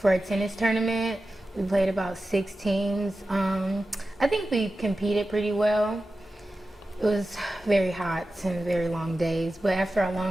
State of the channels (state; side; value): normal; both; correlation 0.93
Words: a tennis tournament. We played about 6 teams. I think we competed pretty well. It was very hot and very long days, but after our